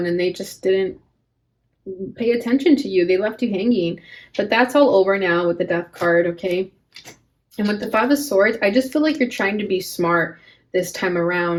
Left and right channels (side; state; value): both; identical; correlation 1.00